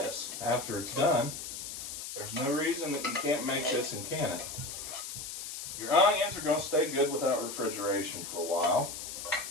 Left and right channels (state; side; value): noise; left; hiss, 8 dB below the sound